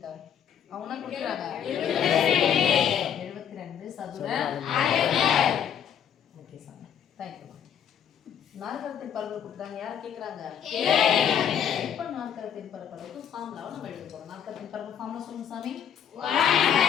அவங்க கொடுக்குறாங்க 72 சதுர அலகுகள். Okay sir, thank you. நாற்கரத்தின் பரப்பளவு கொடுத்தாங்க, யார் கேக்குறாங்க? இப்ப நாற்கரத்தின் பரப்பளவுக்கு ஃபார்முலாவை நம்ம எழுத போறோம். நாற்கரத்தின் பரப்பளவு ஃபார்முலா சொல்லுங்க சாமி.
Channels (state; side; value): quieter; right; 8.8 dB